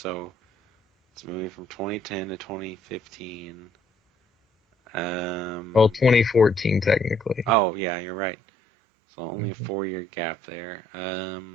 it's a movie from 2010 to 2015. Well, Um, 2014 technically. oh yeah, you're right. So only a Mhm. 4 year gap there.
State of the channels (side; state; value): left; drops out; at 7.6 s